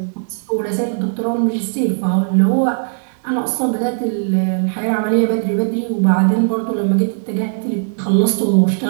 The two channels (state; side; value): silent; left; digital silence